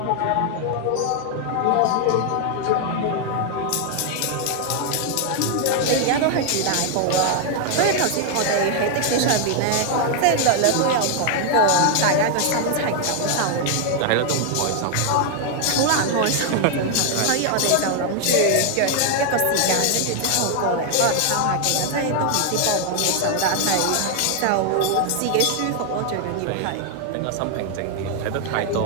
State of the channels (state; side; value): different; both; correlation 0.00